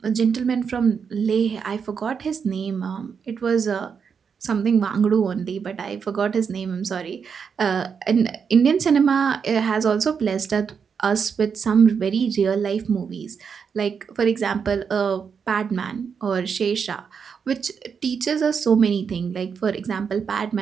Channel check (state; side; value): quieter; left; 6.4 dB